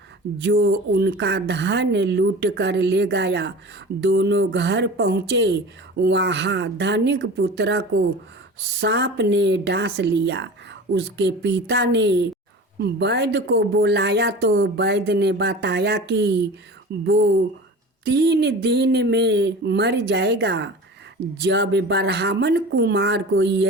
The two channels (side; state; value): both; normal; correlation 0.36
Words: जो उनका धन लूट कर ले गया। दोनों घर पहुँचे। वहाँ धनिक पुत्र को सांप ने डांस लिया। उसके पिता ने वैद्य को बुलाया तो वैद्य ने बताया कि वो 3 दिन में मर जाएगा। जब ब्राह्मण कुमार को